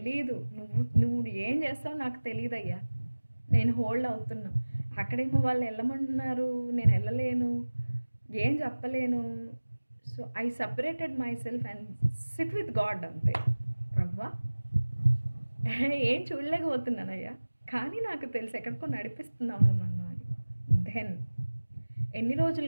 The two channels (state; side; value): inverted; both; correlation -1.00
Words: నువ్వు ఏం చేస్తావు నాకు తెలియదయ్యా, నేను హోల్డ్ అవుతున్నా. అక్కడేమో వాళ్ళు వెళ్ళమంటున్నారు, నేను వెళ్ళలేను, ఏం చెప్పలేను. So I separated my self and SIT with God అంతే. ప్రభువా ఏం చూడలేకపోతున్నానయ్యా, కానీ నాకు తెలుసు ఎక్కడికో నడిపిస్తున్నాను నన్ను అని. దెన్ ఎన్ని రోజులు